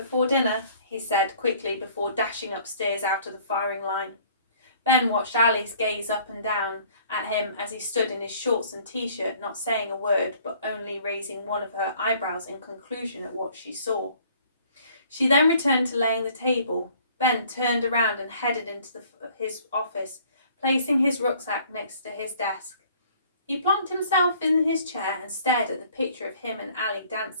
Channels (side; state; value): both; inverted; correlation -0.56